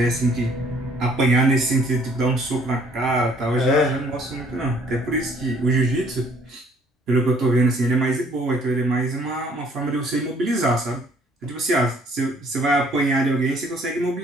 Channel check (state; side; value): normal; both; correlation 0.60